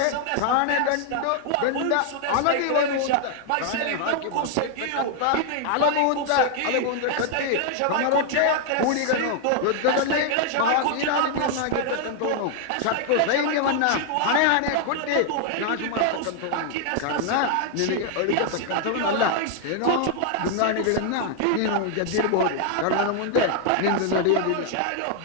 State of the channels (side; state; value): both; different; correlation 0.00